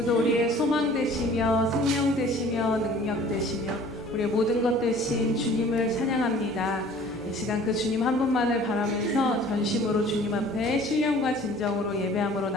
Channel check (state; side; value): normal; both; correlation 0.49